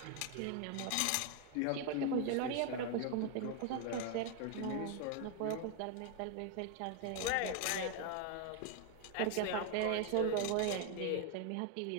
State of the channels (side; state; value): both; different; correlation 0.01